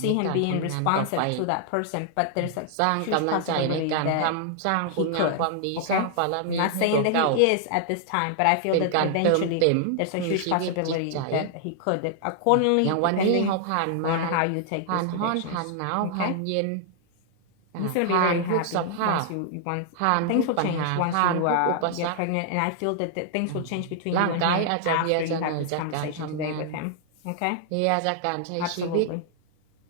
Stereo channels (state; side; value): different; both; correlation 0.00